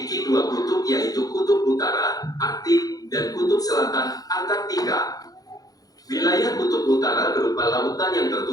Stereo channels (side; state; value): right; late; 0.18 ms